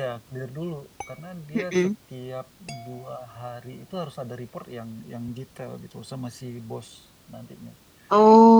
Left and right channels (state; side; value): identical; both; correlation 1.00